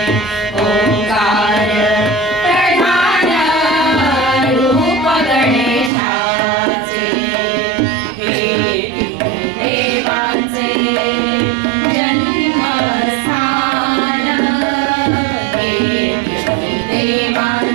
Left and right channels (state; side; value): drops out; left; at 5.9 s